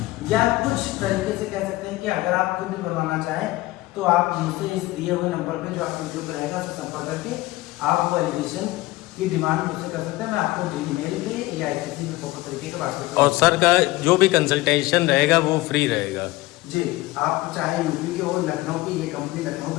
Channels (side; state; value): right; quieter; 19.1 dB